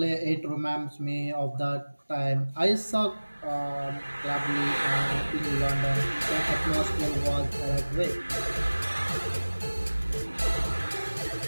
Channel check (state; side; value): inverted; both; correlation -1.00